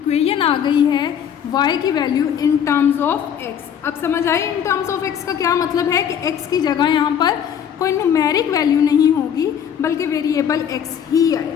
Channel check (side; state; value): right; quieter; 8.6 dB